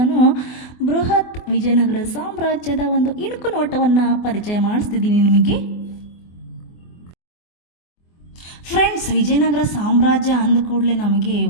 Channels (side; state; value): right; late; 24 ms